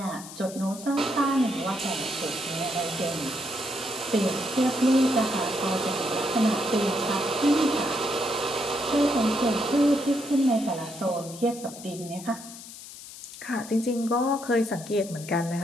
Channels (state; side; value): noise; left; hiss, 14 dB below the sound